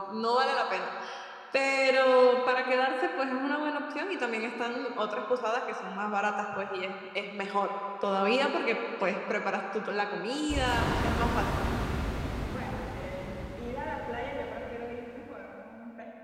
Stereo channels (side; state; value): both; identical; correlation 1.00